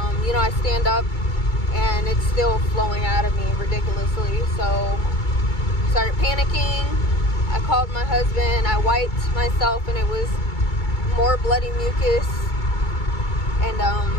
you know, I stand up, and it's still flowing out of me ridiculously. So, started panicking. I called my husband. I wiped myself, and it was more bloody mucus. And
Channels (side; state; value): right; late; 2.3 ms